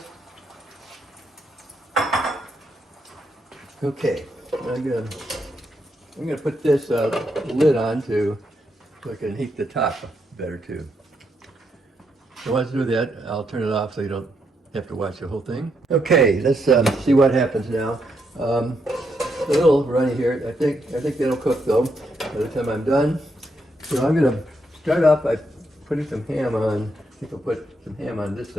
Okay, I'm gonna put this lid on so I can heat the top better too. So once I do that, I'll turn it off so you don't have to watch the whole thing. Okay, let's see what happens now. A little runny here. I think that'll cook though by the time I'm done. So I'm gonna start off by putting some ham on. I think I'll put some ham on this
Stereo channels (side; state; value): both; normal; correlation 0.79